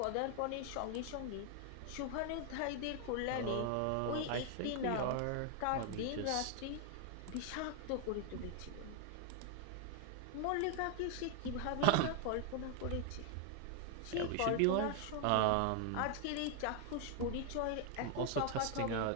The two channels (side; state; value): both; different; correlation 0.00